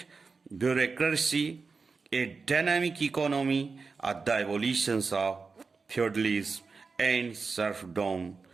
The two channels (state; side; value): quieter; left; 4.6 dB